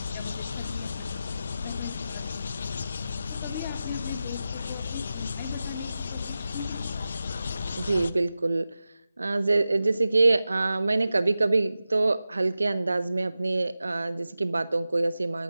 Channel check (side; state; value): both; inverted; correlation -0.93